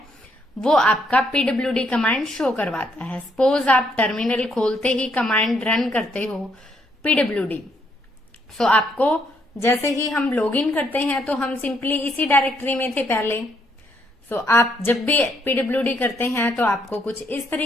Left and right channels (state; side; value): normal; both; correlation 0.72